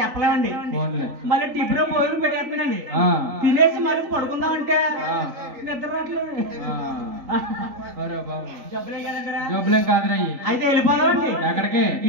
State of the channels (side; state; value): left; late; 3.9 ms